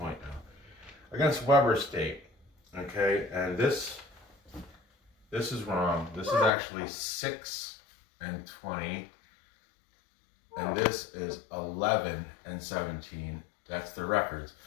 now. Against Weber State. Okay, and this is wrong. This is actually 6-20. And this is 11-17. That's the records.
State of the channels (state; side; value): drops out; right; at 6.5 s